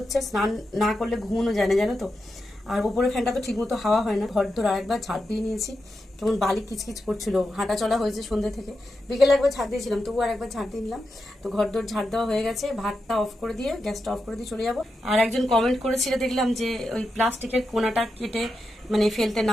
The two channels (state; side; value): normal; both; correlation 0.88